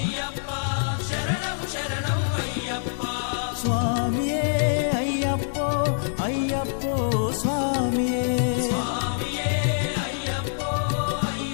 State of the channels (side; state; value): right; silent; 62 dB below the other